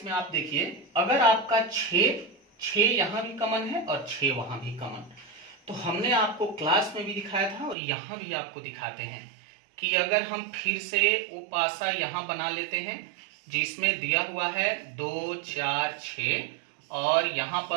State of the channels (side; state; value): left; drops out; at 7.8 s